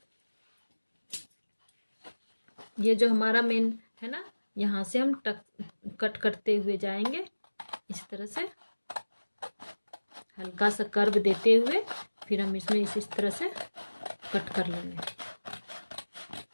ये जो हमारा मेन है ना, यहाँ से हम कट करते हुए जाएंगे, इस तरह से हल्का सा कर्व देते हुए फिर हम इसमें इस तरह से कट कर लेंगे।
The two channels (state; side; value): inverted; both; correlation -1.00